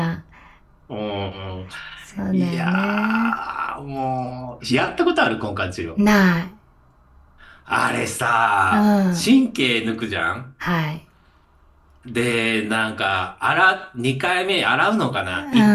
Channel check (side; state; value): both; identical; correlation 1.00